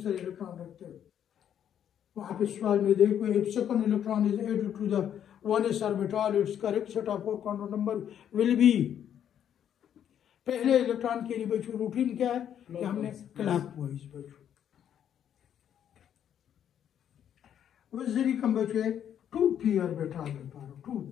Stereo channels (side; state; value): right; quieter; 9.6 dB